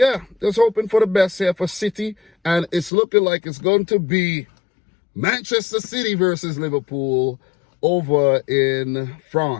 just hoping for the best here for City, and it's looking like it's going to be Manchester City versus Liverpool over in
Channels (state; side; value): drops out; right; at 2.9 s